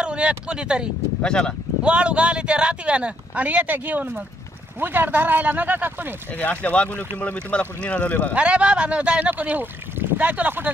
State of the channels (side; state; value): both; normal; correlation 0.72